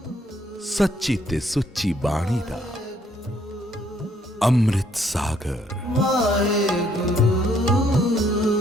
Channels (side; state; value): both; normal; correlation 0.67